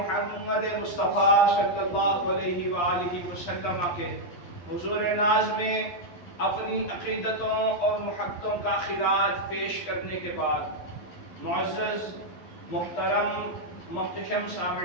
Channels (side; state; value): right; late; 11 ms